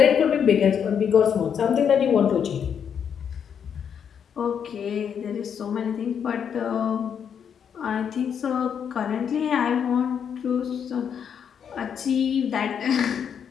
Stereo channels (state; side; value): quieter; right; 7.8 dB